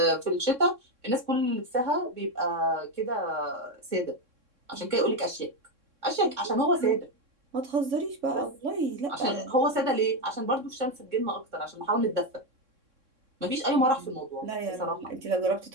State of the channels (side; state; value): left; late; 3.6 ms